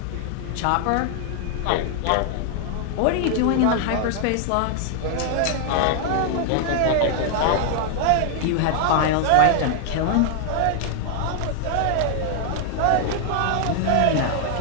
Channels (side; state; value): both; different; correlation 0.00